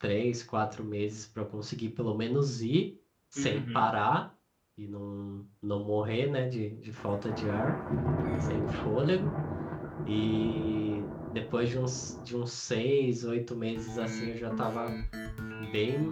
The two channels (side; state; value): both; identical; correlation 1.00